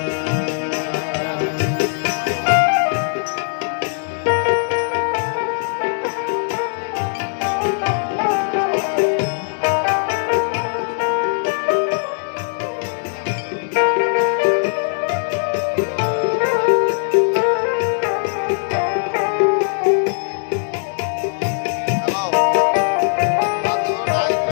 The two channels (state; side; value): silent; right; digital silence